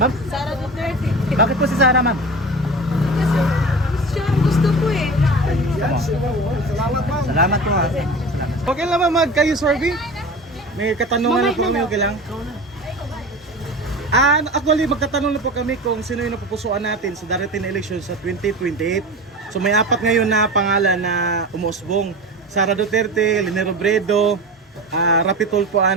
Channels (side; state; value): both; normal; correlation 0.32